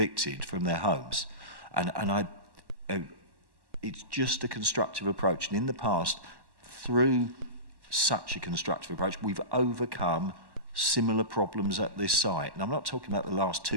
from their homes. And it's just a constructive approach. And in the past, through such a constructive approach, we've overcome similar problems at this site. And I'm not talking about the last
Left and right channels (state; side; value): late; left; 1.1 ms